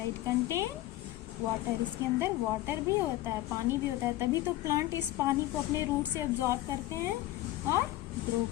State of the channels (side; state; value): right; quieter; 16.1 dB